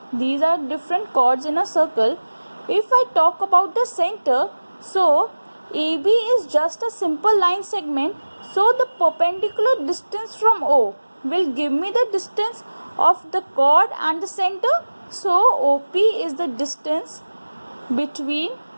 these are different chords in a circle. If I talk about the center, so AB is just a simple line segment. So the perpendicular distance from O will give me the distance of the chord and the center. So OP is the distance between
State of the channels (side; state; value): both; inverted; correlation -1.00